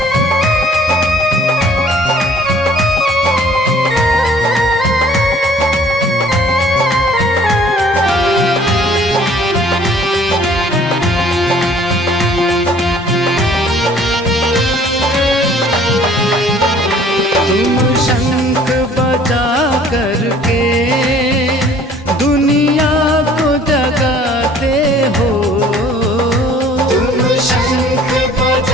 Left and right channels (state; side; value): normal; both; correlation 0.54